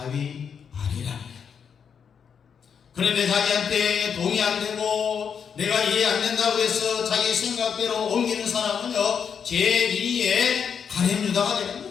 아니랍니다. 그런데 자기한테 동의 안 되고 내가 이해 안 된다고 해서 자기 생각대로 옮기는 사람은요, 제2의 가룟 유다가 되는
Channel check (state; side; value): quieter; right; 7.1 dB